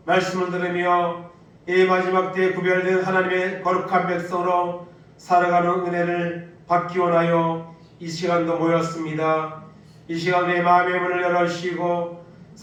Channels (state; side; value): identical; both; correlation 1.00